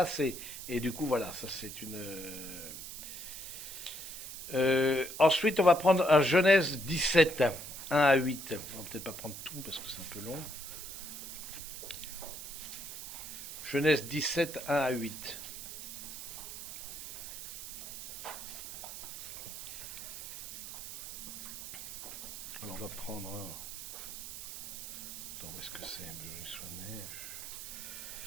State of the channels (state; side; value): noise; right; hiss, 9 dB below the sound